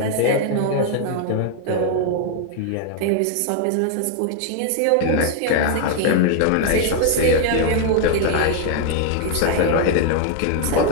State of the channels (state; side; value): different; both; correlation 0.00